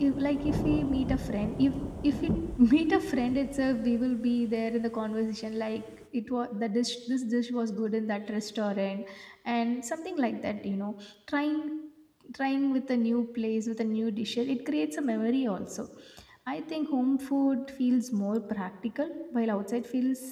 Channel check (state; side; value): identical; both; correlation 1.00